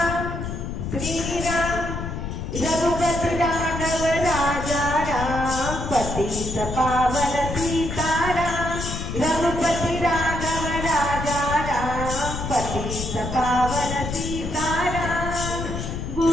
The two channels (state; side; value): noise; left; rumble, 5 dB below the sound